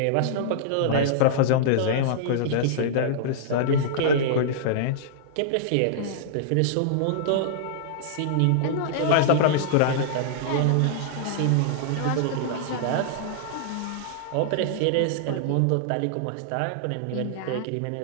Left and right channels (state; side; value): different; both; correlation -0.02